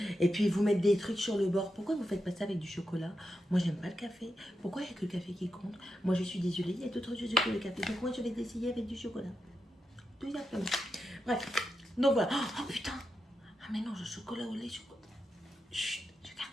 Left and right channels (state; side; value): normal; both; correlation 0.87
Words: et puis ils vous mettent des trucs sur le bord. Pourquoi vous faites pas ça avec du chocolat? Moi j'aime pas le café. Pourquoi il n'y a que le café qui compte? Moi je suis désolée, il y a d'autres choses que le café. Donc moi je vais essayer avec du chocolat. Tout simplement. Bref, donc voilà. Oh putain! Ah mais non, le chocolat au lait, chocolat. Chut, je garde